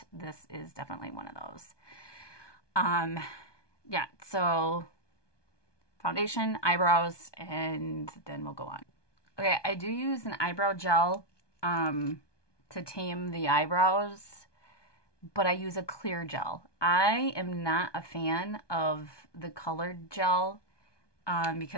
this is definitely one of those. Yeah, so foundation, eyebrows, and then we'll go on. Okay, I do use an eyebrow gel to tame the eyebrows, but I use a clear gel. I am not a fan of the colored gel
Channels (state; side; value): late; right; 1.2 ms